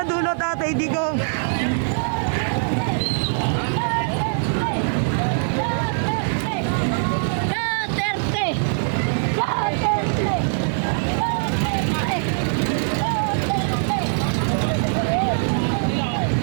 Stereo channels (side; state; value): left; silent; digital silence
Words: dulo, Tatay Digong.